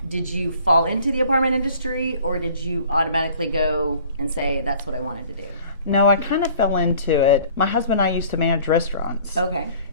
Did you fall into the apartment industry, or did you automatically go and say that's what I wanted to do? No, I kind of fell into it. My husband and I used to manage restaurants. Okay.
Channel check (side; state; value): both; inverted; correlation -0.51